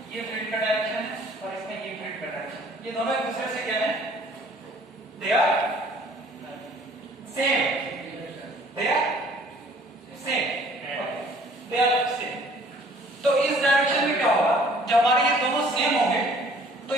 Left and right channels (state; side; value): normal; both; correlation 0.55